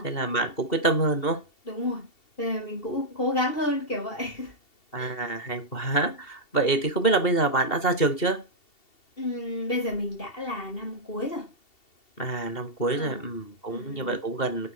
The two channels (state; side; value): late; right; 2.7 ms